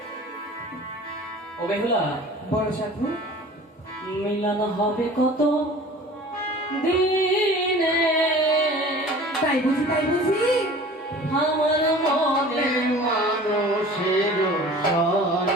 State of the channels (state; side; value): normal; both; correlation 0.43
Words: ও বেহুলা, বলো সাধু। মিলন হবে কত দিনে, তাই বুঝি? তাই বুঝি? আমার মনে মানুষের